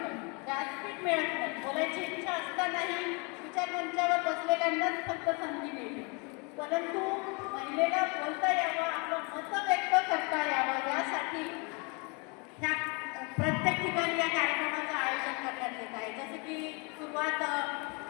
व्यासपीठ मिळत नाही, बोलायची इच्छा असतानाही विचारमंचावर बसलेल्यांनाच फक्त संधी मिळते. परंतु महिलेला बोलता यावं, आपलं मत व्यक्त करता यावं यासाठी ह्या प्रत्येक ठिकाणी या कार्यक्रमाचं आयोजन करण्यात येत आहे. जसं की सुरुवात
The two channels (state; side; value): quieter; right; 32.0 dB